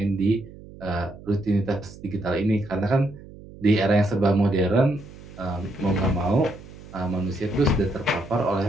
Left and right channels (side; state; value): right; noise; hum, 18 dB below the sound